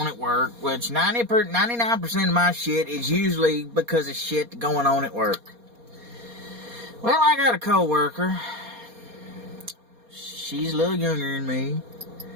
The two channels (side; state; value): left; late; 4.2 ms